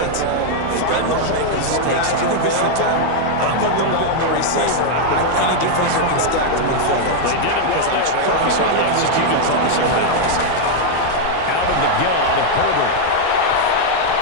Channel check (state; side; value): different; both; correlation 0.00